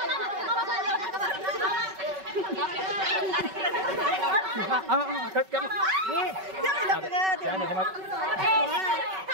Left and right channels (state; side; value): late; left; 5.3 ms